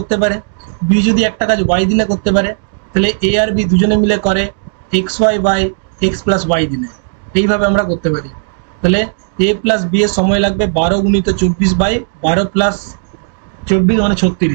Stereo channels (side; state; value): left; silent; digital silence